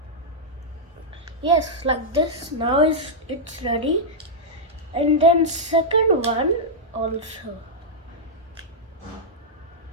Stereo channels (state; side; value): normal; both; correlation -0.07